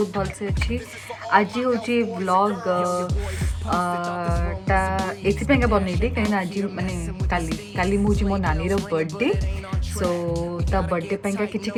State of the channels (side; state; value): both; identical; correlation 1.00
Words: भल से अच्छी। आज हूँ व्लॉग टा एपाई बनईली कहीं आज माने काली मुझे मो नानी बर्थडे। सो ता बर्थडे पाइंका किछि